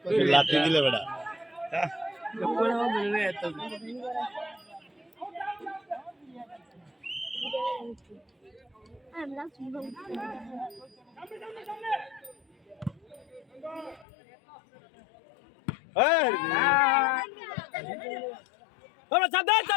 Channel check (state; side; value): drops out; right; at 14.1 s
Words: লাঠি দিলে বেড়া